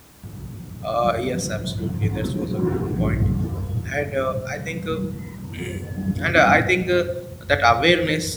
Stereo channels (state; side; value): identical; both; correlation 1.00